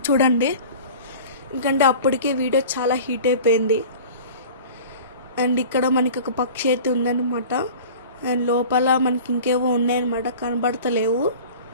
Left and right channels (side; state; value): both; inverted; correlation -0.40